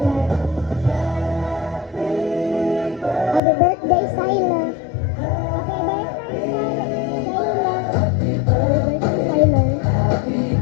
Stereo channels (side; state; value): right; drops out; at 3.4 s